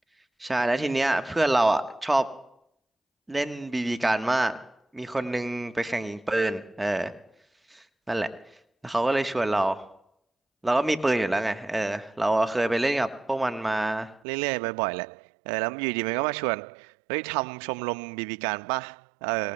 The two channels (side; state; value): left; drops out; at 14.2 s